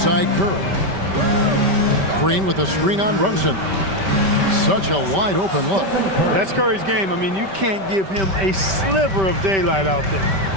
Curry. Green with a screen on Brunson. Such a wide open look. That's Curry's game. I mean, you can't give him a sliver of daylight out there.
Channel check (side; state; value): left; late; 5.2 ms